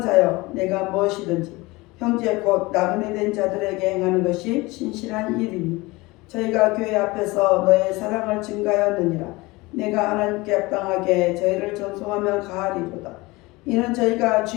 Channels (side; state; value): right; quieter; 22.4 dB